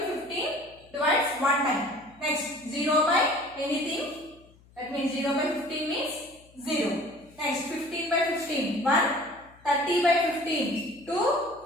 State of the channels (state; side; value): noise; left; hum, 27 dB below the sound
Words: 15 divides one time. Next 0 by anything. That means 0 by 15 means 0. Next 15 by 15 1. 30 by 15 2.